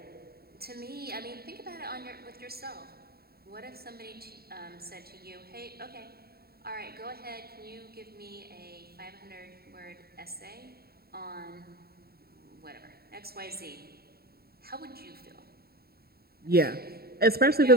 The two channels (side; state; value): left; late; 0.45 ms